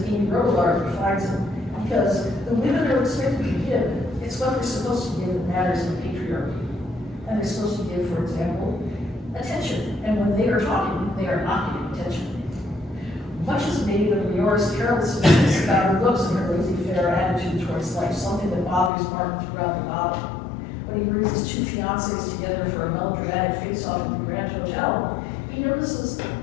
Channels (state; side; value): drops out; right; at 18.9 s